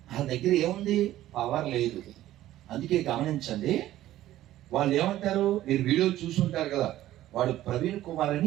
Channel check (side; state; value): left; quieter; 14.1 dB